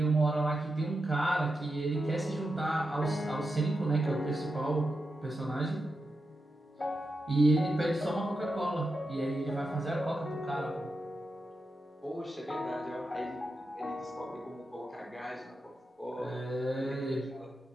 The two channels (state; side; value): normal; both; correlation 0.88